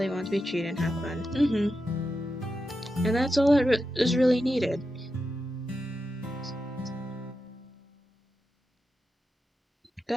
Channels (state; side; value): normal; both; correlation 0.89